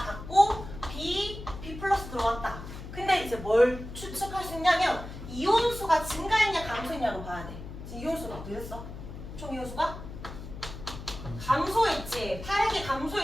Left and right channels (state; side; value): noise; left; hum, 11 dB below the sound